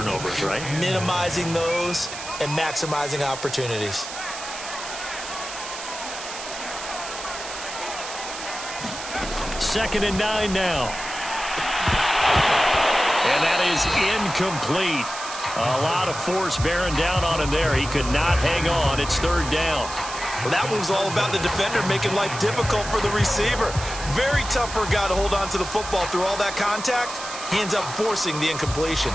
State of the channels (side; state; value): right; noise; hiss, 9 dB below the sound